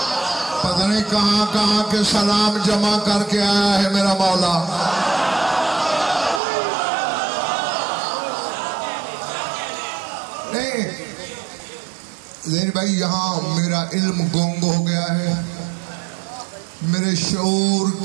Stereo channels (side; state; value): left; drops out; at 6.4 s